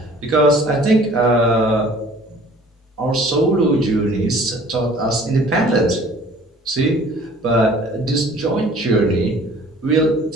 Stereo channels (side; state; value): both; normal; correlation 0.51